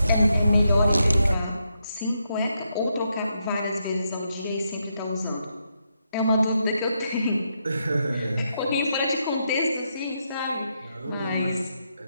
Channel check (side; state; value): both; inverted; correlation -0.81